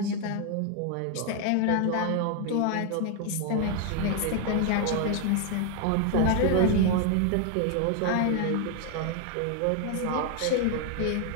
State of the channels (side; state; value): both; different; correlation 0.00